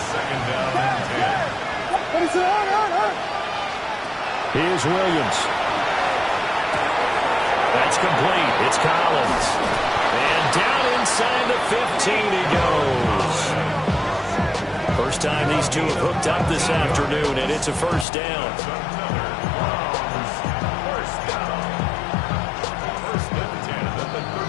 2nd down and 10. Here's Williams. That's complete. It's Collins. And down inside the 15 he goes. first time these two have hooked up this afternoon, and it's a first down. First down. First and 10 at the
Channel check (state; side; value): drops out; right; at 18.1 s